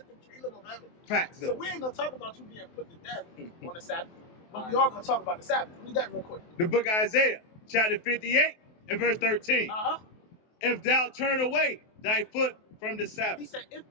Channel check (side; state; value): right; late; 23 ms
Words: the kingdom of heaven. Facts. So we ain't going to talk about you being put to death on the Sabbath, but we are going to talk about the Sabbath. Read that real quick. The book of Isaiah, chapter 58 and verse 13. If thou turn away thy foot from the Sabbath. He said, if